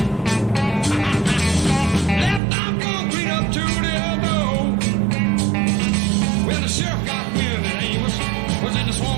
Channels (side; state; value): left; drops out; at 2.4 s